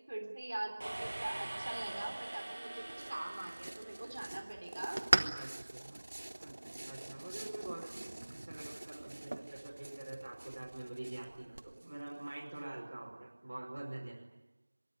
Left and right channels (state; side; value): inverted; both; correlation -1.00